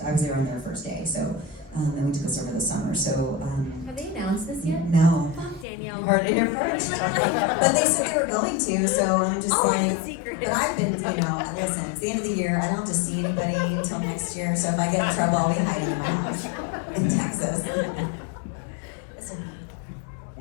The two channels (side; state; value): right; drops out; at 5.7 s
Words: there on their first day. So and we took us over the summer. So Have they announced this yet? no. Fuck Danielle. You heard it here first. But they said they were going to, so I'm just secret. But I've been, listen, it's the end of the year. I don't have to see anybody until next year. So if I get in trouble, I'll be hiding in my house in Texas.